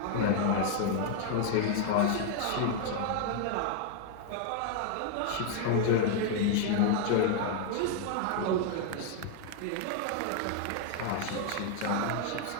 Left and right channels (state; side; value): different; both; correlation 0.00